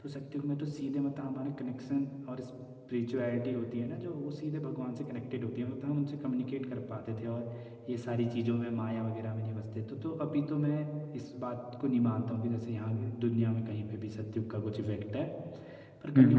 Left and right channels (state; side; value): identical; both; correlation 1.00